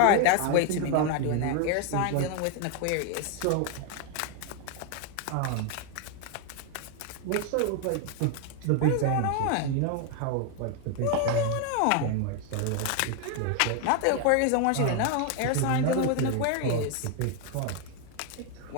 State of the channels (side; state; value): both; different; correlation 0.01